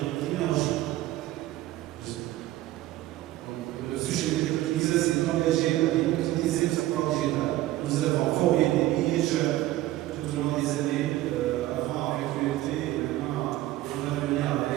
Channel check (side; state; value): left; quieter; 15.6 dB